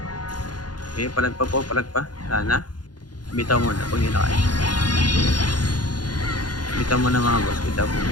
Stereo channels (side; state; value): right; late; 0.69 ms